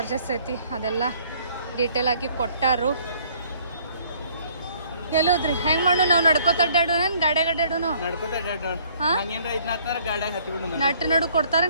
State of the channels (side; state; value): both; inverted; correlation -0.60